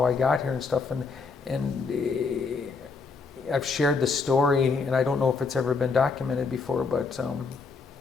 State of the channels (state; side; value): quieter; right; 4.6 dB